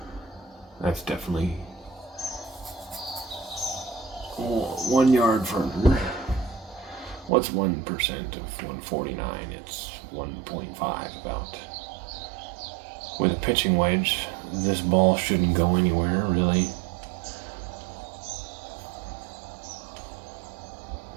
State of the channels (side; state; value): left; drops out; at 7.3 s